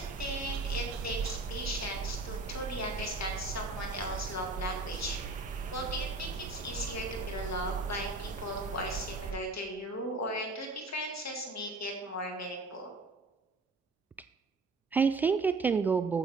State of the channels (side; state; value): left; quieter; 3.3 dB